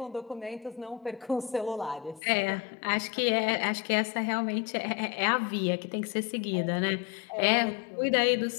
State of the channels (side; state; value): right; drops out; at 2.2 s